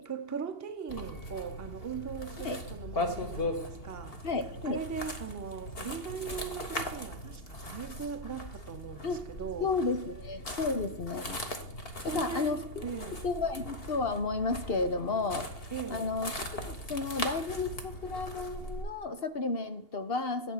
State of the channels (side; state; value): right; late; 2.8 ms